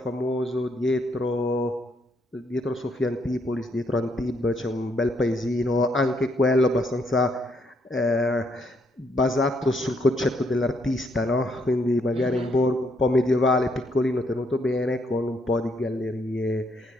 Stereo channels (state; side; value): normal; both; correlation 0.73